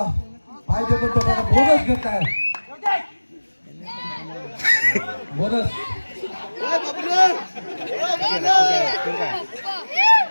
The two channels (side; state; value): both; inverted; correlation -1.00